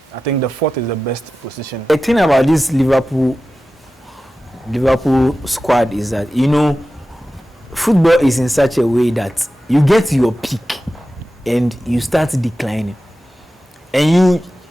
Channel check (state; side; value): normal; both; correlation 0.94